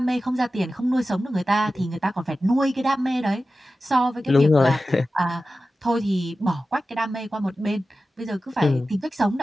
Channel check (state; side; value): normal; both; correlation 0.94